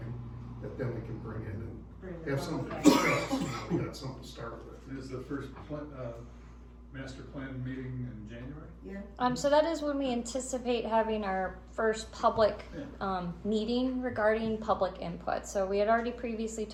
that then we can bring in and have something to discuss. We got something to start with. Is the first master plan meeting in January? Yeah. So that is when we anticipate having our first public meeting regarding public input. So we had already previously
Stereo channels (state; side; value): identical; both; correlation 1.00